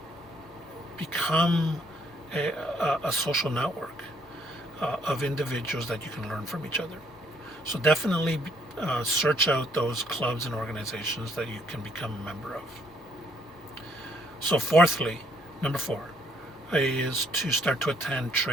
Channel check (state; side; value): normal; both; correlation 0.67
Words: become a social network of individuals that you can learn from each other. So definitely search out those clubs and organizations that you can become a member of. So fourthly, number 4, is to start to attend